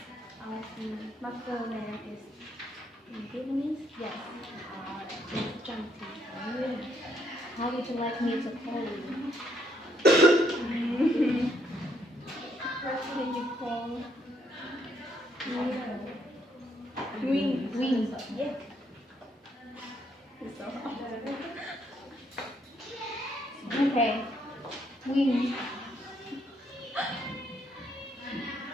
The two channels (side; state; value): both; normal; correlation 0.72